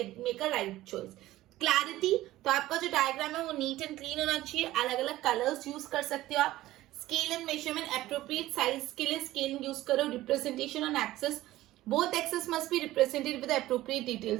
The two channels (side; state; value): left; quieter; 16.0 dB